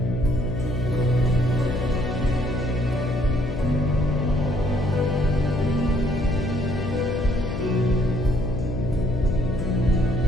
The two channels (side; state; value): left; noise; hum, 5 dB below the sound